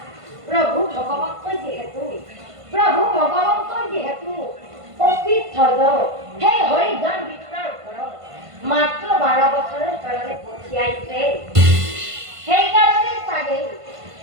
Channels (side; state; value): left; late; 1.5 ms